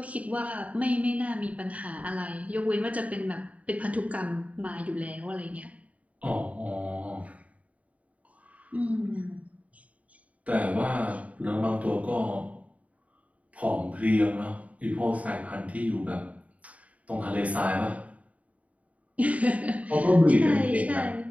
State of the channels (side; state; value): left; late; 0.069 ms